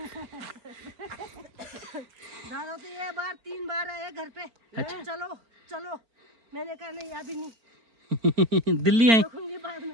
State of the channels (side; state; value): left; late; 4.4 ms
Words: दादा तो ये बार 3 बार आए घर पे। अच्छा। चलो चलो मैंने कहा नहीं अभी नहीं दिल्ली आई। देखूंगी बाद